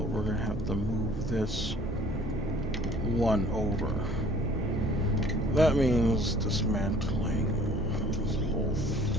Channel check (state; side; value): normal; both; correlation 0.53